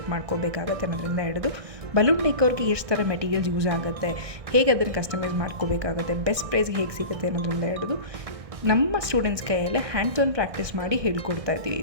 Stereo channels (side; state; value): left; late; 1.6 ms